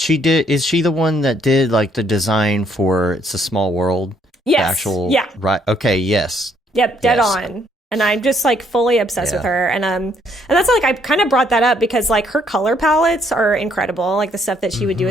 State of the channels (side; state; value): both; normal; correlation 0.68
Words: did. Is she the one that did like the design for It's a Small World? Yes. Right. Okay. Yes. Yep. Dead on. And I'm just like fully obsessed with her. And that's like, I kind of brought that up because like her color palettes are incredible. Like the stuff that she would do